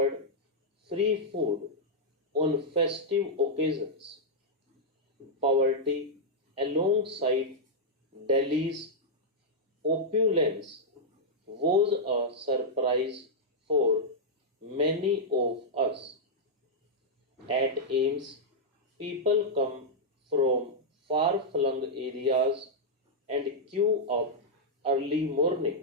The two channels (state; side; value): normal; both; correlation -0.06